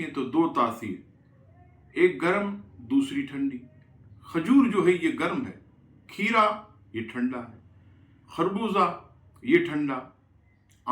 تو دو تاثیر، ایک گرم دوسری ٹھنڈی۔ کھجور جو ہے یہ گرم ہے، کھیرا یہ ٹھنڈا ہے، خربوزہ یہ ٹھنڈا،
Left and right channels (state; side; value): identical; both; correlation 1.00